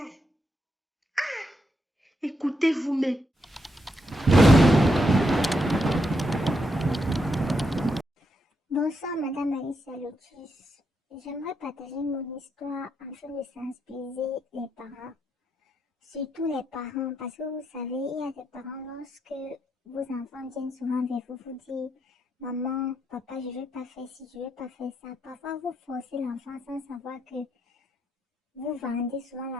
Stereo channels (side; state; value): both; normal; correlation 0.81